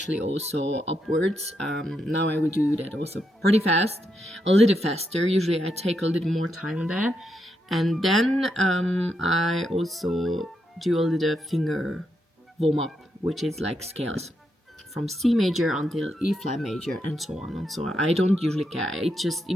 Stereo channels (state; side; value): normal; both; correlation 0.81